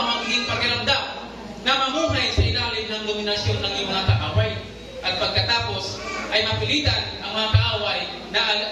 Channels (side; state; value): both; identical; correlation 1.00